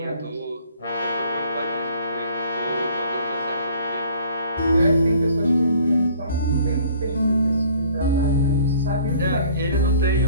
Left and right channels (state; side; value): inverted; both; correlation -0.54